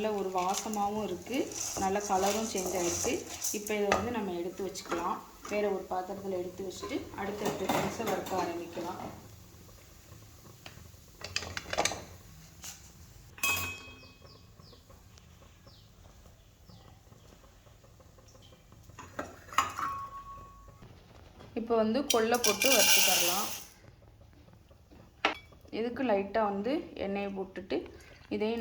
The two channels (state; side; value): identical; both; correlation 1.00